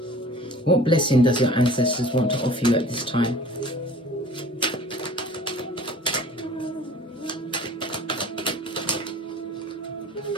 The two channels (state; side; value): normal; both; correlation 0.46